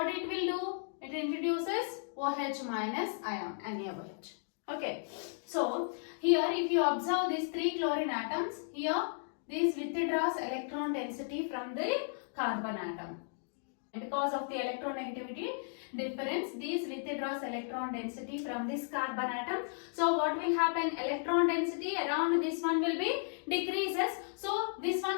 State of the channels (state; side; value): silent; right; digital silence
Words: it will do? It introduces OH minus ion, NaOH. Okay, so here if you observe these 3 chlorine atoms, here this withdraws electron density from the carbon atom. Because of the electronegativity difference, this withdraws electron density from this carbon atom. So what will happen? Electron density around this one will be decreases. So this one